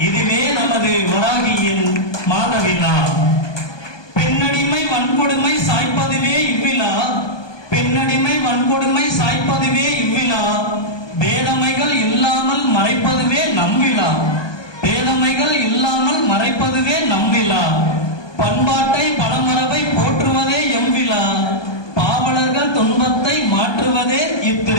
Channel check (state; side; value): late; right; 1.2 ms